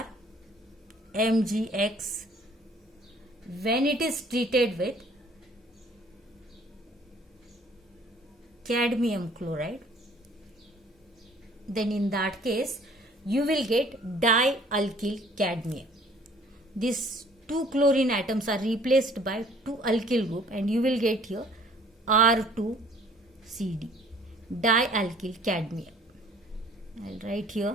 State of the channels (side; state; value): both; normal; correlation 0.55